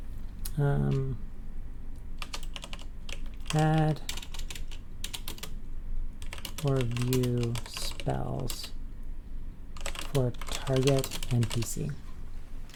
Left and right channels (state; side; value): identical; both; correlation 1.00